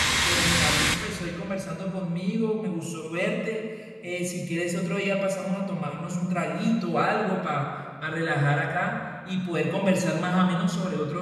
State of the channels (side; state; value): both; identical; correlation 1.00